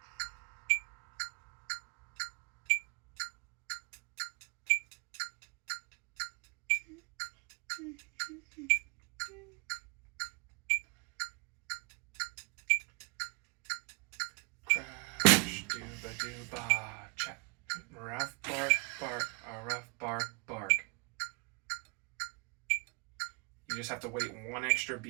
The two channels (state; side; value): quieter; left; 35.8 dB